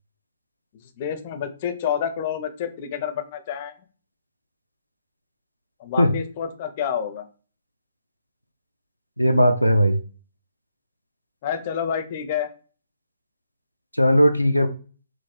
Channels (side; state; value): both; inverted; correlation -0.81